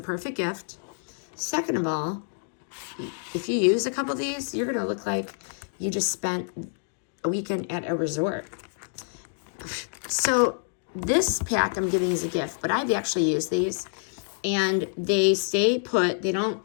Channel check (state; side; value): silent; right; digital silence